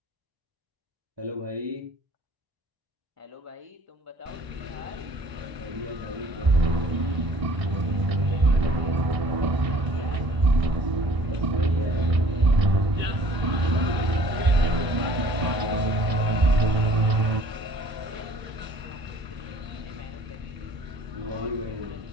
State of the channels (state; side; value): late; left; 1.0 ms